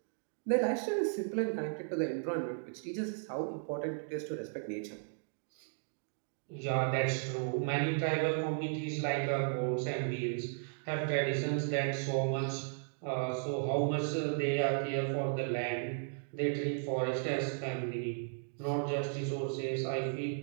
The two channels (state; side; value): silent; left; digital silence